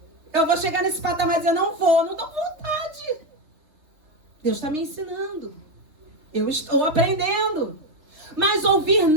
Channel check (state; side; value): late; left; 3.2 ms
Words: Eu vou chegar nesse patamar e dizer, não vou, não dou vontade. Deus está me ensinando. Eu estou aprendendo. Mas ouvir